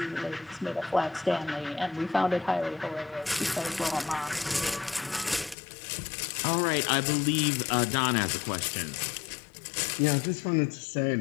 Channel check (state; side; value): drops out; right; at 5.6 s